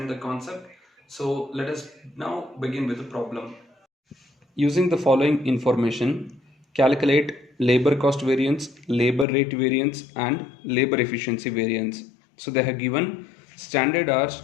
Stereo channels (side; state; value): right; drops out; at 9.2 s